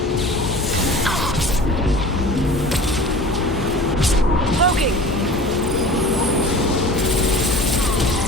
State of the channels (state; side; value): normal; both; correlation 0.40